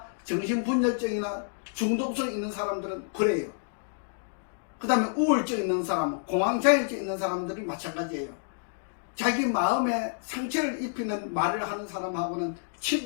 정신분열증이나 중독성 있는 사람들은 그래요. 그 다음에 우울증 있는 사람, 공황장애증 있는 사람들이 마찬가지예요. 자기 마음에 상처를 입히는 말을 하는 사람하고는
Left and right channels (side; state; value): right; silent; digital silence